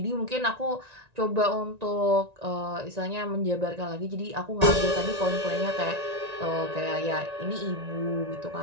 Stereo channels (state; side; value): late; left; 1.9 ms